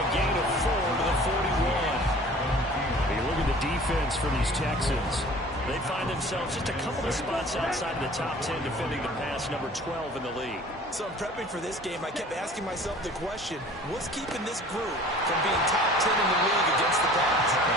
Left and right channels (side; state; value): both; normal; correlation 0.47